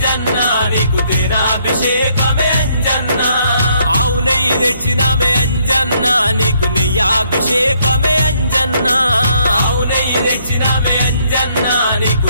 నీకు తేనాభిషేకమే అంజన్న ఆవు నెయ్యి తెచ్చినామే అంజన్న నీకు నెయ్యాభిషేకమే అంజన్న ఆవు నెయ్యి తెచ్చినామే అంజన్న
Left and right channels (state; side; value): inverted; both; correlation -0.69